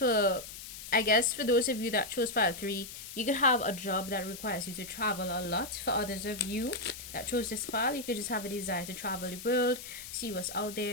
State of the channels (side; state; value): left; noise; hiss, 12 dB below the sound